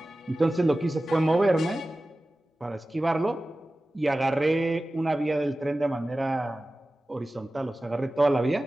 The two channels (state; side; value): normal; both; correlation 0.96